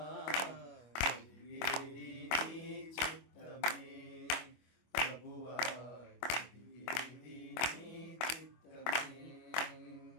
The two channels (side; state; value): right; late; 25 ms